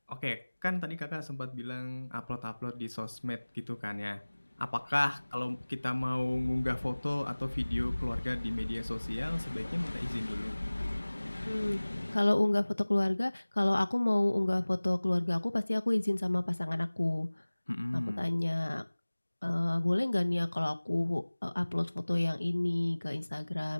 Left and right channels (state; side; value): inverted; both; correlation -1.00